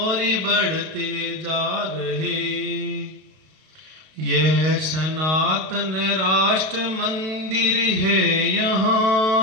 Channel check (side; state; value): left; late; 32 ms